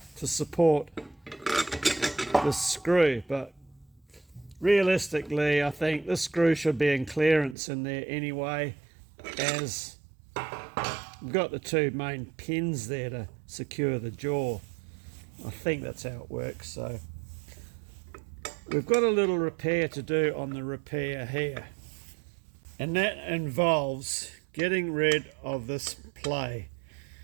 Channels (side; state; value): left; drops out; at 7.6 s